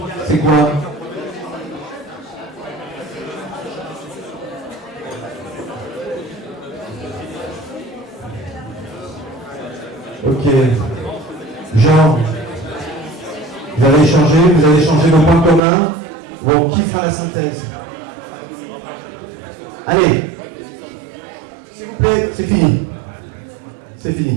c'est quoi? Ok. Jean, vous avez échangé vos points communs. Bon, qui fera la synthèse? Allez. S'il vous plaît, c'est fini. C'est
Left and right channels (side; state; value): left; drops out; at 15.6 s